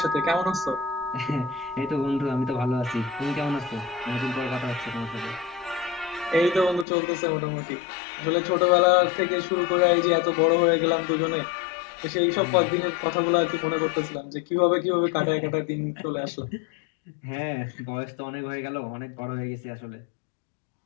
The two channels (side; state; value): right; drops out; at 6.9 s